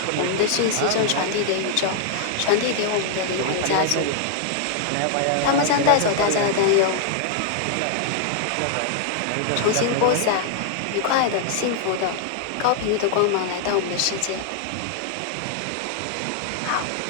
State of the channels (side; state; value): both; different; correlation 0.00